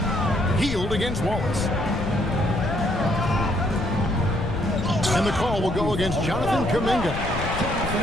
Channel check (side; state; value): left; noise; rumble, 6 dB below the sound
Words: Hield against Wallace. And the call will go against Jonathan Kuminga.